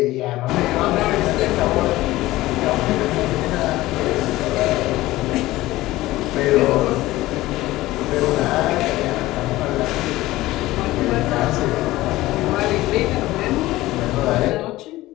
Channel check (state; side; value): quieter; right; 17.5 dB